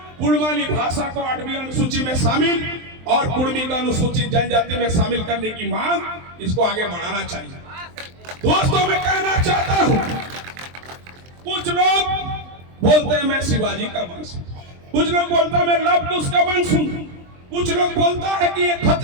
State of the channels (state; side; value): late; left; 23 ms